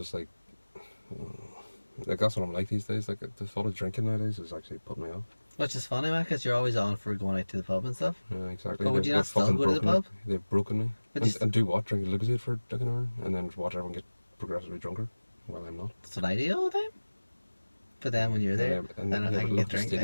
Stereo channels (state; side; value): inverted; both; correlation -1.00